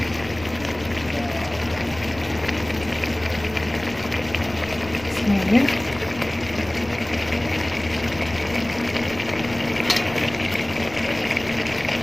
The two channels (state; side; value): noise; left; rumble, 17 dB below the sound